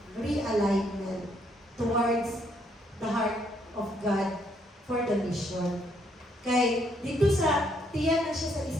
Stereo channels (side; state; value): both; normal; correlation 0.71